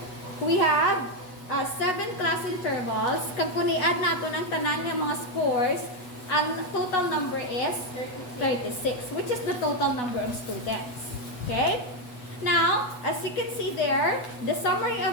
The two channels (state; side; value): late; right; 8.1 ms